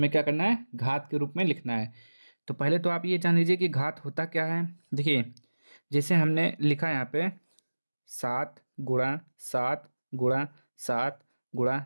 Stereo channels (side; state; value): both; inverted; correlation -1.00